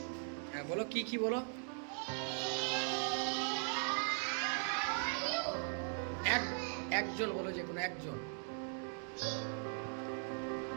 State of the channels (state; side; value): silent; left; 51 dB below the other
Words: হ্যাঁ বলো, কি কি বলো? একজন বলো, যে কোনো একজন